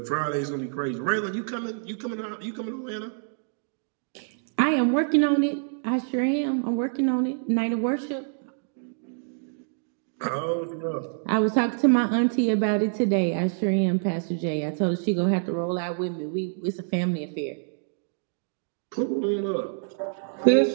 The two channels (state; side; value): silent; left; digital silence